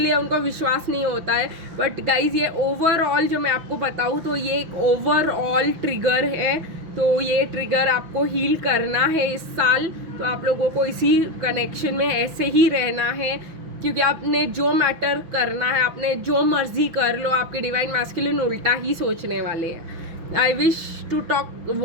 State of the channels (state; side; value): late; left; 5.9 ms